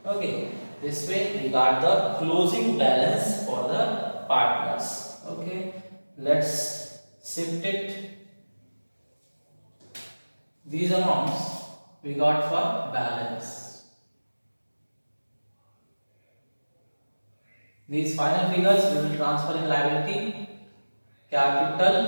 Okay, this way we got the closing balance for the partners. Okay, let's shift it. These amounts we got for balance. These final figures we will transfer in liability capital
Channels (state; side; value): inverted; both; correlation -1.00